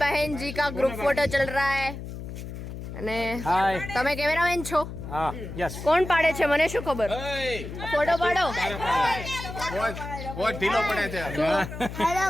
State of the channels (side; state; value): left; noise; hum, 9 dB below the sound